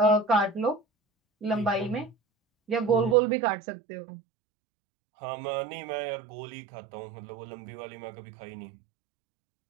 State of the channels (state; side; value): drops out; left; at 3.2 s